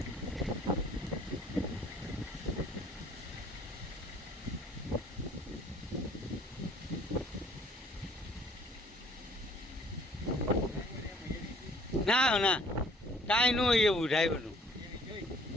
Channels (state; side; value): normal; both; correlation 0.57